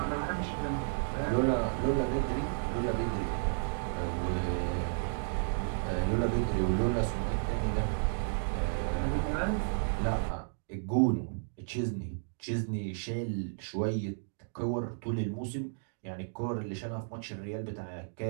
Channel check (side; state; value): left; silent; digital silence